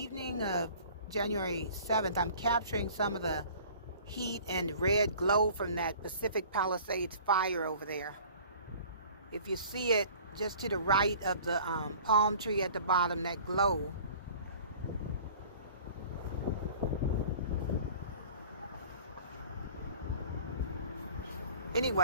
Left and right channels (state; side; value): inverted; both; correlation -0.47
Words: of January 7th. I'm capturing some of the heat and red glow from that Pacific Palisades fire over there. If you see it just to the right of the palm tree at the bottom, that glow.